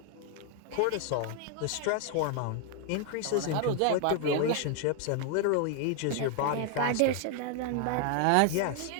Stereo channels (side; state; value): both; different; correlation 0.00